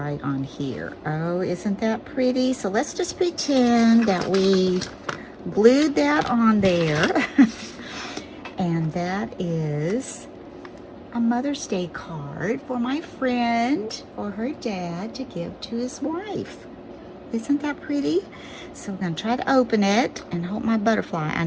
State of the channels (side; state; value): both; identical; correlation 1.00